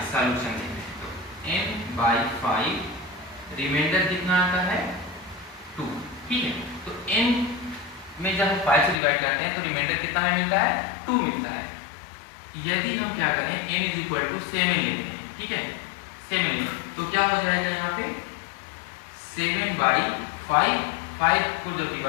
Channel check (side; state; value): right; drops out; at 9.0 s